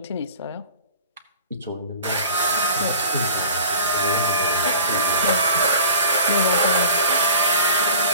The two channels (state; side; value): inverted; both; correlation -0.43